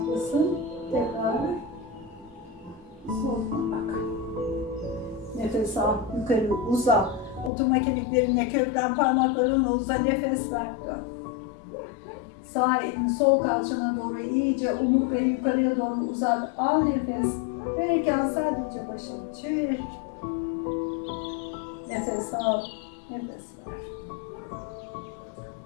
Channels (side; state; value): right; drops out; at 7.5 s